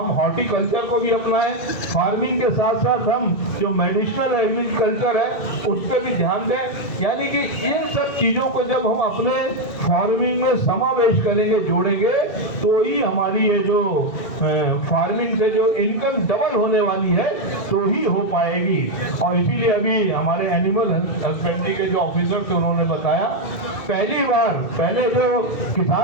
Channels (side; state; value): right; late; 1.2 ms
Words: हॉर्टिकल्चर को भी अपनाएं, फार्मिंग के साथ साथ हम जो मेडिसिनल एग्रीकल्चर है उस पर भी ध्यान दें। यानी कि इन सब चीज़ों को जब हम अपने फार्मिंग में समावेश करेंगे, जोड़ेंगे, तो ही हमारी ये जो फार्मिंग से जो इनकम डबल होने वाली है तो ही हो पाएगी। और इसीलिए अभी हमारे एनिमल हस्बेंड्री के जो ऑफिसर थे उन्होंने बताया, पहली बार पहले जो